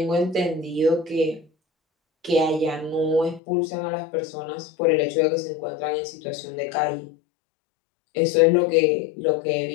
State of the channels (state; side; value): drops out; right; at 3.4 s